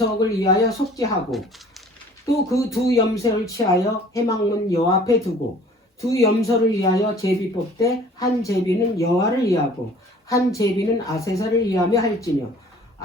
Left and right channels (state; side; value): normal; both; correlation 0.50